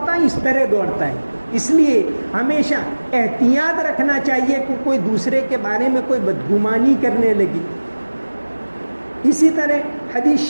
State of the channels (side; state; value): both; inverted; correlation -1.00